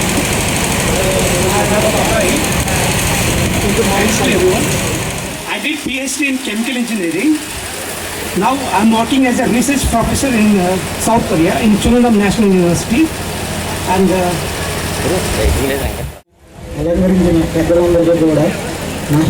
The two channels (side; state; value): both; identical; correlation 1.00